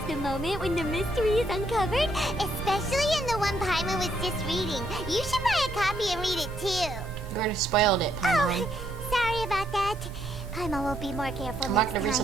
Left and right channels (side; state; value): both; normal; correlation 0.73